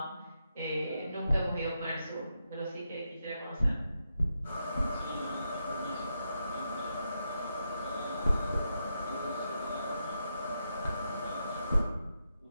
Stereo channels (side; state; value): both; inverted; correlation -0.84